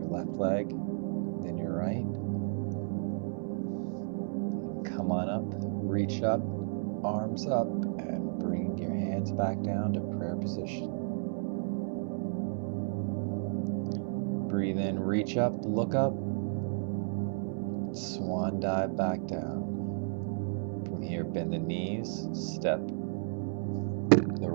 left leg, then your right. Come on up, reach up, arms up, and bring your hands back down to prayer position. Breathe in, reach up, look up, swan dive back down. From here, bend the knees, step the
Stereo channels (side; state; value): left; silent; 56 dB below the other